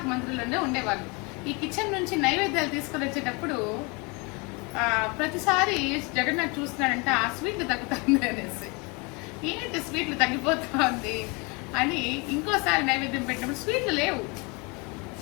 మందిరంలోనే ఉండేవాళ్ళు. ఈ కిచెన్ నుంచి నైవేద్యాలు తీసుకొని వచ్చేటప్పుడు ప్రతిసారి జగన్నాథ్ చూస్తున్నాడంటే ఆ స్వీట్లు తగ్గుతుంది అనేసి, ఏంటి స్వీట్లు తగ్గిపోతుంది అని ఇంకోసారి నైవేద్యం పెట్టినప్పుడు స్వీట్లు లేవు.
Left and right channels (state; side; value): quieter; right; 29.2 dB